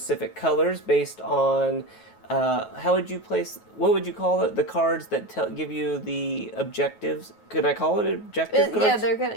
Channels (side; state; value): right; late; 9.3 ms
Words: colors based on what would you call it? The cards that give you the objectives. Could I call it objective cards?